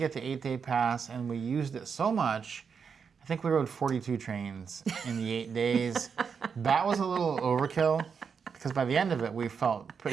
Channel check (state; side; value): quieter; left; 6.2 dB